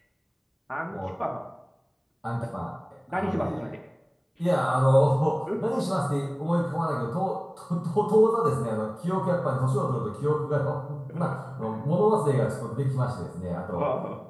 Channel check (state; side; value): identical; both; correlation 1.00